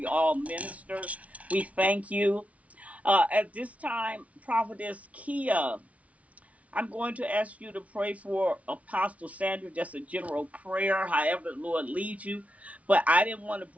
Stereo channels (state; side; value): late; left; 0.066 ms